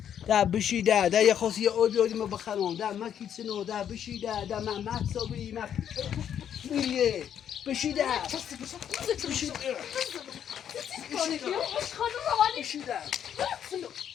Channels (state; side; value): quieter; right; 9.3 dB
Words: ده بشی ده یه خاصی یه آبی آدی ما بخرم ده مکی سنو ده بشی ده من مکسابی میریه بشی ده بشی ده بشی ده